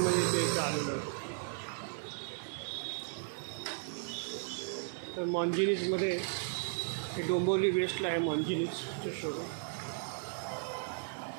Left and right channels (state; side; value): silent; left; 54 dB below the other